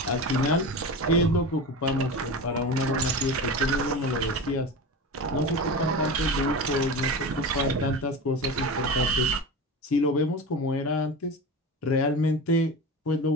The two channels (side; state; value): both; normal; correlation 0.28